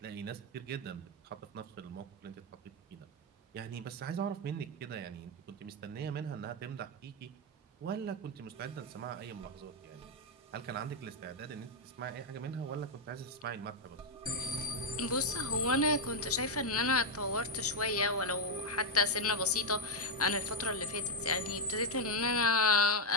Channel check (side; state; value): both; normal; correlation 0.01